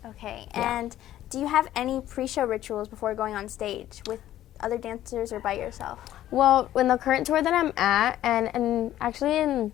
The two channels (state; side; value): quieter; right; 13.0 dB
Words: Okay, and do you have any pre-show rituals before going on stage with other dancers or by yourself? Well, in the current tour that I'm at, and actually in